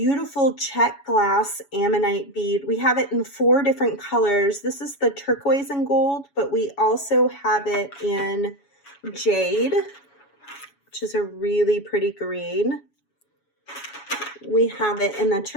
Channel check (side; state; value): right; late; 7.1 ms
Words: Czech glass Ammonite bead. We have it in 4 different colors. This is the turquoise and gold, but we also have it in jade, which is a really pretty green. We have it in the